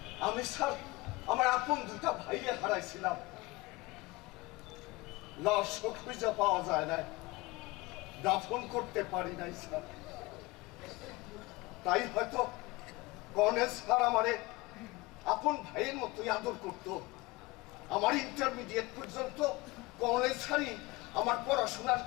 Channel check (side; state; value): right; quieter; 22.3 dB